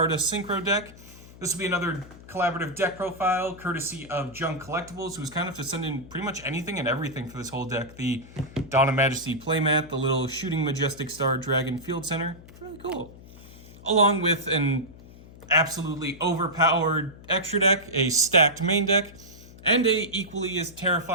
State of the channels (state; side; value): noise; left; hum, 19 dB below the sound